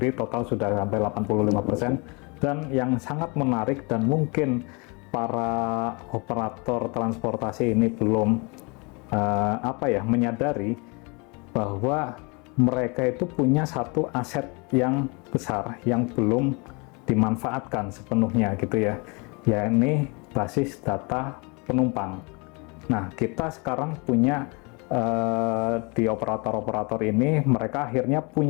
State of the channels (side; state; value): right; quieter; 30.2 dB